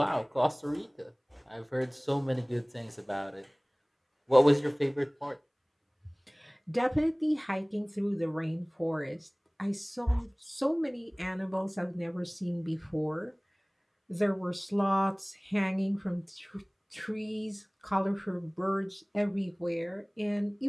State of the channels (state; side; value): identical; both; correlation 1.00